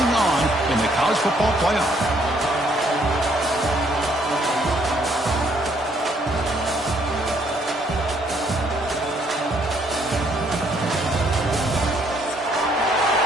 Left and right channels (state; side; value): normal; both; correlation 0.68